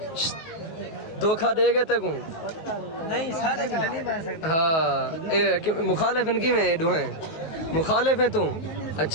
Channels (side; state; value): right; late; 19 ms